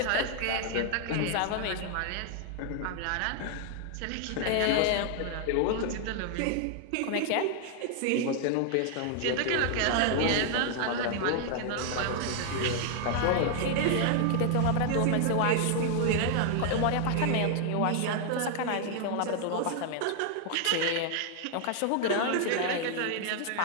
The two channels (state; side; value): different; both; correlation 0.00